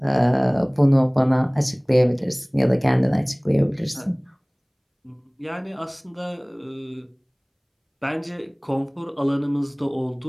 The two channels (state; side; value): identical; both; correlation 1.00